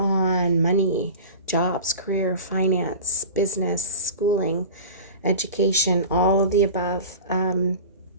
money, jobs, career, finance, business, schooling, education, all of the above.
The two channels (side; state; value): both; inverted; correlation -0.35